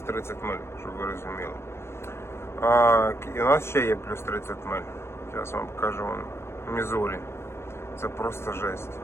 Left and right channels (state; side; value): late; right; 0.12 ms